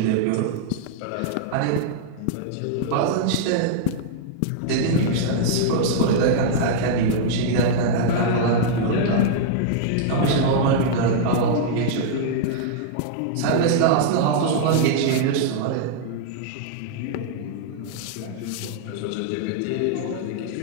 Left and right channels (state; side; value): different; both; correlation -0.01